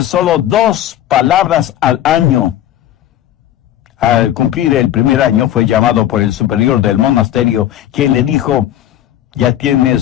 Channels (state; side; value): quieter; right; 12.1 dB